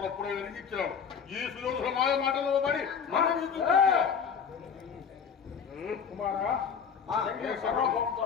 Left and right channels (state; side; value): quieter; right; 6.8 dB